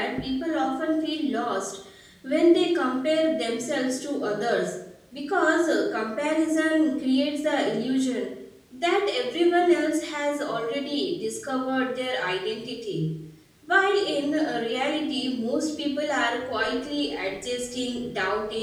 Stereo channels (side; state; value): both; identical; correlation 1.00